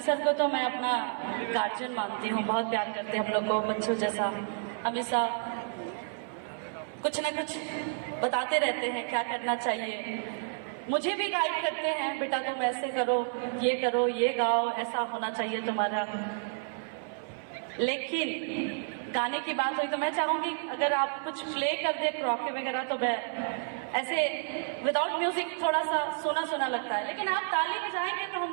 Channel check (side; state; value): left; silent; 55 dB below the other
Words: सर को तो मैं अपना गार्जियन मानती हूँ, बहुत प्यार करते हैं हम लोग को बच्चों जैसा, हमेशा कुछ ना कुछ बताते रहते हैं क्या करना चाहिए। मुझे भी गाइड करते हैं, बेटा तुम ऐसे करो, ये गाओ, ऐसा होना चाहिए तुम्हारा। लेकिन गाने की बात हुई तो मैं चाहूंगी अगर आप कुछ प्ले कर दे क्रॉके वगैरह, तो मैं ऐसे विदाउट म्यूजिक थोड़ा सा सुना सुना लगता है, लेकिन आप ताली बजाएंगे तो